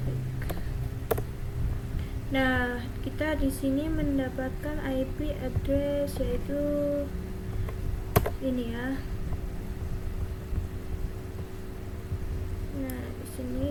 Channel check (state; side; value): identical; both; correlation 1.00